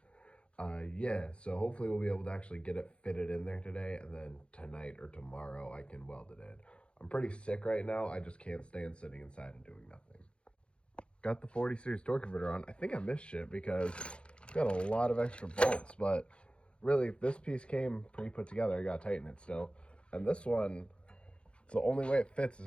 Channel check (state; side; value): late; right; 0.057 ms